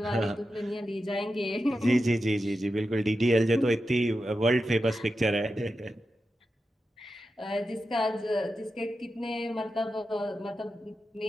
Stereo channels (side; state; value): both; normal; correlation 0.90